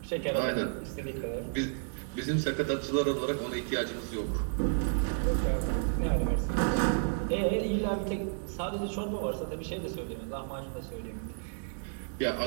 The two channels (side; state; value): left; silent; digital silence